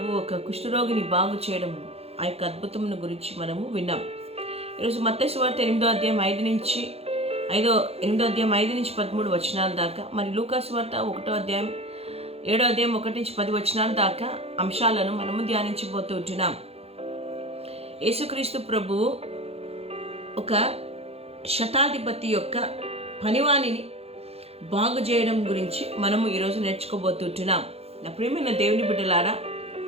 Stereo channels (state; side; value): late; left; 0.29 ms